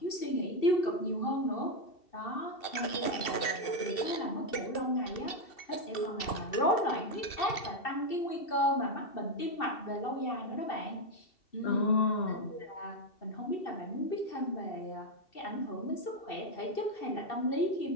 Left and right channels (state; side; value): late; right; 2.7 ms